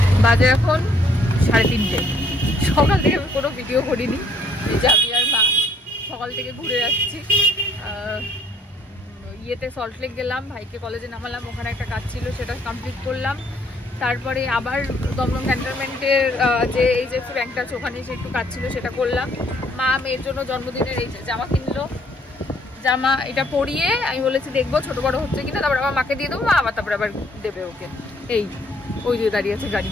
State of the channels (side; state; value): both; normal; correlation 0.65